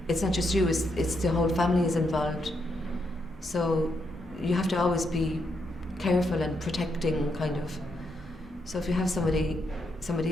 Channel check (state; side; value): normal; both; correlation 0.79